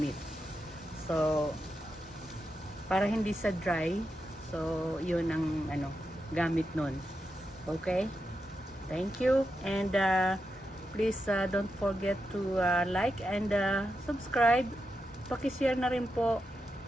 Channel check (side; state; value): both; normal; correlation 0.87